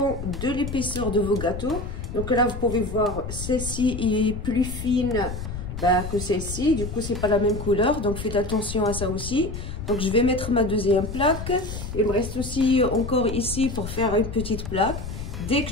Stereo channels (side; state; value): left; noise; rumble, 7 dB below the sound